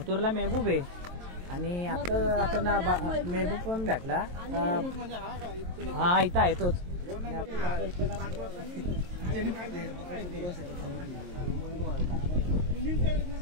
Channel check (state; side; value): late; left; 22 ms